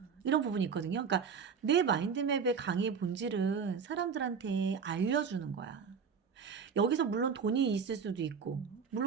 이런 부분이 있거든요. 그러니까 내 마인드맵의 강의의 본질은 사람들한테 알려주는 거야. 여기서 물론 돈이 있을 수도 있고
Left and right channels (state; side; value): quieter; left; 6.2 dB